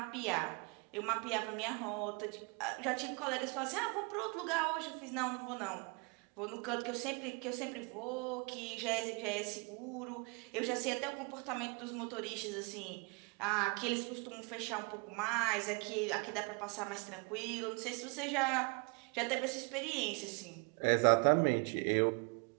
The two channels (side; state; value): left; quieter; 32.4 dB